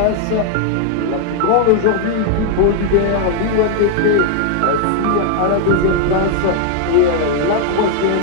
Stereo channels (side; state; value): both; different; correlation 0.00